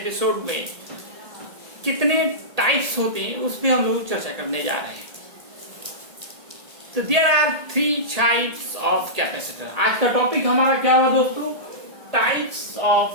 में कितने टाइप्स होते हैं उस पर हम लोग चर्चा करने जा रहे हैं. तो there are 3 types of capacitor. आज का टॉपिक हमारा क्या हुआ दोस्तों? Types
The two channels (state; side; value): late; left; 1.8 ms